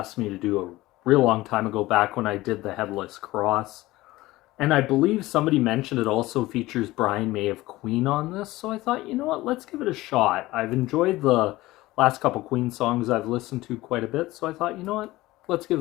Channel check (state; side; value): quieter; right; 18.4 dB